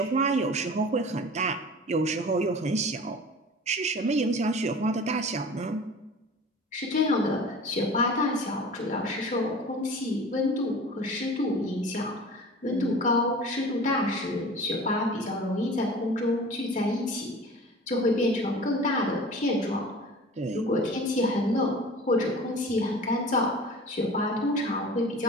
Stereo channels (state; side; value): normal; both; correlation 0.40